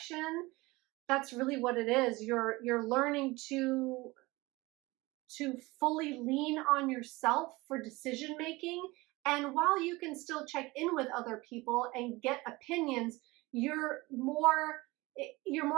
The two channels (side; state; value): left; quieter; 22.0 dB